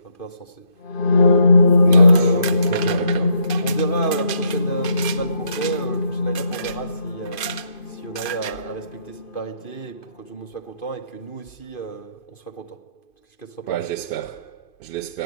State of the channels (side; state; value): right; late; 2.5 ms